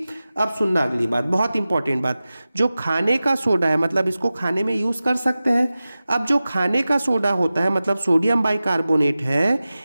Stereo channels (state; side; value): inverted; both; correlation -0.95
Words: अब सुनना अगली बात, बहुत इंपॉर्टेंट बात। जो खाने का सोडा है मतलब इसको खाने में यूज कर सकते हैं। अब जो खाने का सोडा होता है मतलब सोडियम बाइकार्बोनेट है,